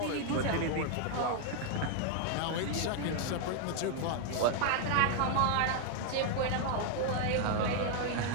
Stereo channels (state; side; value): different; both; correlation 0.00